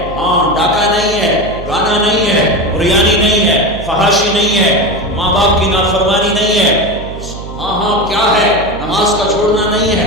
ڈاکہ نہیں ہے، گانا نہیں ہے، ریانی نہیں ہے، فحاشی نہیں ہے، ماں باپ کی نافرمانی نہیں ہے، کیا ہے، نماز کا چھوڑنا نہیں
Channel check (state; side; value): noise; right; hum, 12 dB below the sound